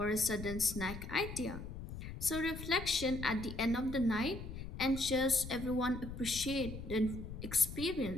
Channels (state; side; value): noise; left; rumble, 9 dB below the sound